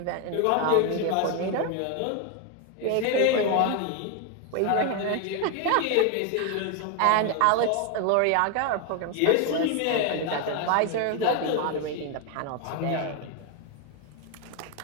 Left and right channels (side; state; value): both; different; correlation 0.01